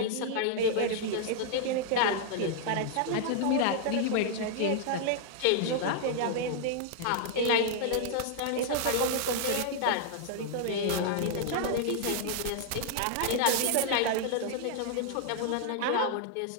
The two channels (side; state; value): both; different; correlation -0.01